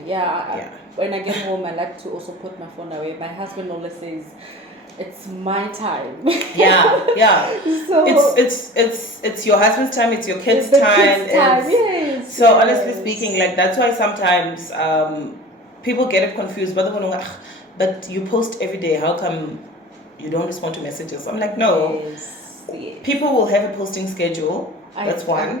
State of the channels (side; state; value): both; normal; correlation 0.38